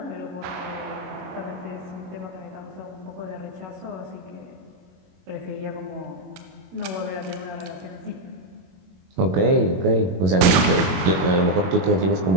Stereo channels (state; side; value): late; left; 22 ms